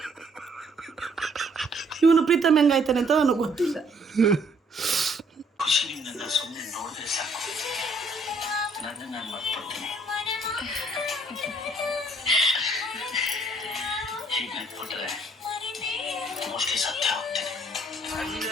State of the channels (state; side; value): normal; both; correlation 0.64